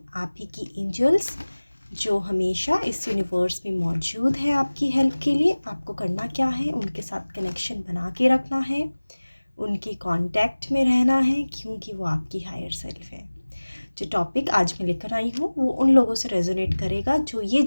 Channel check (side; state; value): both; inverted; correlation -1.00